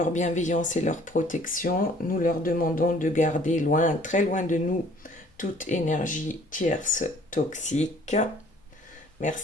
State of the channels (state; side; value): normal; both; correlation 0.55